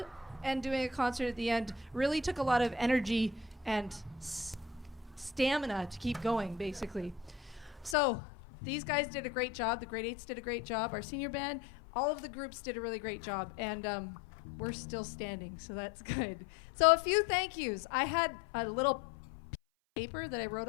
and doing a concert at the end really took a lot of energy and stamina to keep going, basically. So these guys did a great job. The grade 8s did a great job. Our senior band, all of the groups did a really great job. And we're still standing, so that's good. So a few thank yous. I had a little paper that I wrote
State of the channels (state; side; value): drops out; right; at 8.0 s